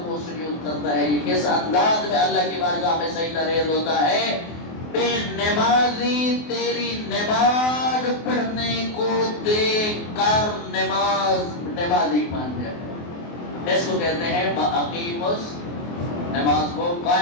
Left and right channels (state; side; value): late; right; 24 ms